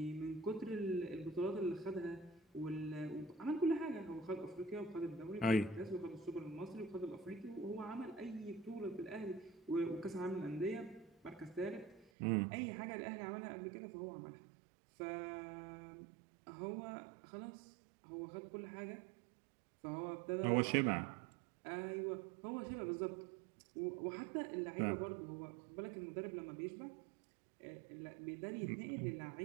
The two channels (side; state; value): left; drops out; at 12.1 s